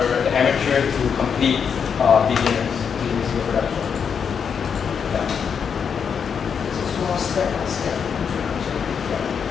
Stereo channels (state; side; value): quieter; right; 6.9 dB